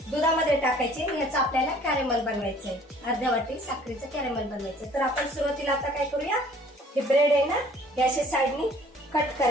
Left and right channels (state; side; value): normal; both; correlation 0.54